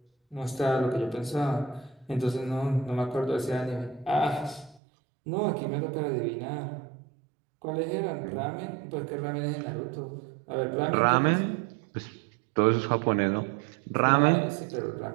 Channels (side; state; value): left; drops out; at 4.8 s